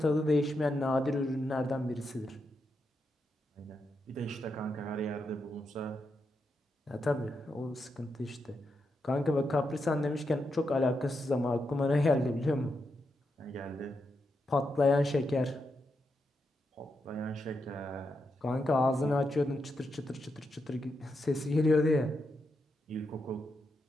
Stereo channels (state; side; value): normal; both; correlation 0.84